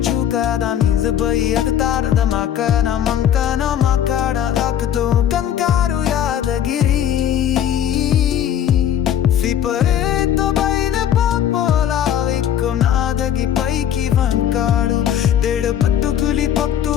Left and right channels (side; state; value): right; quieter; 10.0 dB